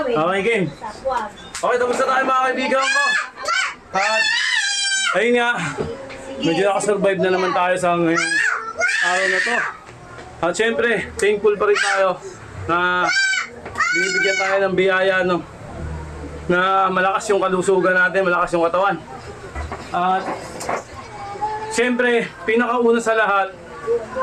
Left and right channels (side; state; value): both; identical; correlation 1.00